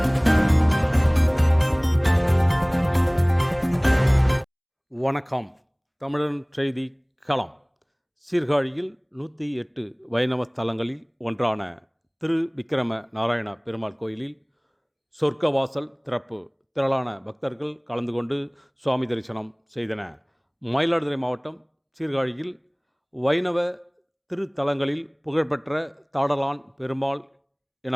வணக்கம். தமிழன் செய்தி களம். சீர்காழியில் 108 வைணவ ஸ்தலங்களில் ஒன்றான திரு விக்கிரம நாராயண பெருமாள் கோயிலில் சொர்க்கவாசல் திறப்பு. திரளான பக்தர்கள் கலந்து கொண்டு சுவாமி தரிசனம் செய்தன. மயிலாடுதுறை மாவட்டம் சீர்காழியில் வைணவ திருத்தலங்களில் புகழ்பெற்ற தாடலான் பெருமாள்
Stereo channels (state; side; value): identical; both; correlation 1.00